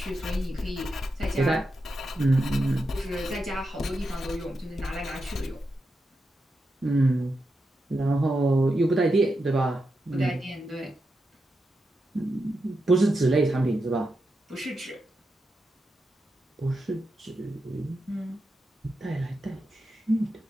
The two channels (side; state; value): both; normal; correlation 0.87